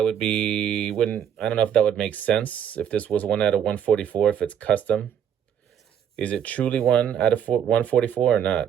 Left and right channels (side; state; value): left; quieter; 8.9 dB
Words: would be, I don't know if that would make sense if this was 1 out of 144, if it's custom. Is it truly 1 out of 144 or not?